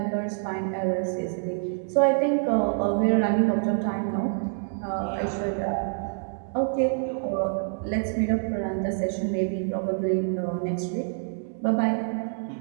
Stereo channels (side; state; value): left; silent; digital silence